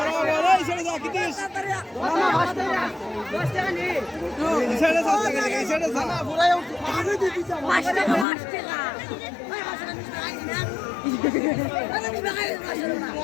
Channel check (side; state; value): right; drops out; at 8.2 s